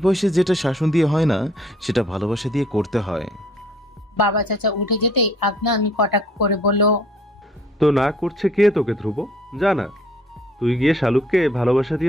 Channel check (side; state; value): both; normal; correlation 0.59